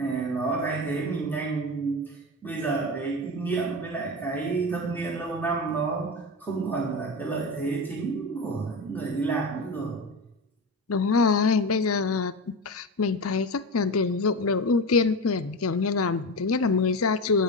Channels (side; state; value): both; normal; correlation 0.23